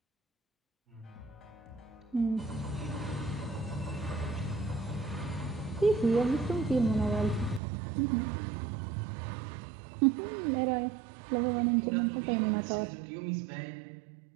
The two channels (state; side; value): drops out; left; at 7.6 s